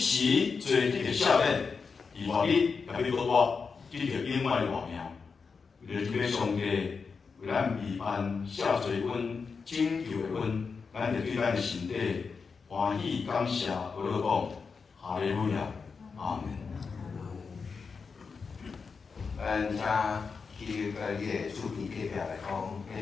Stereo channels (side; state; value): right; quieter; 5.2 dB